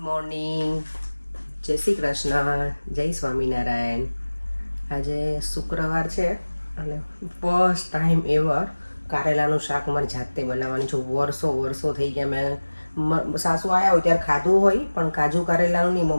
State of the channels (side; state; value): both; inverted; correlation -1.00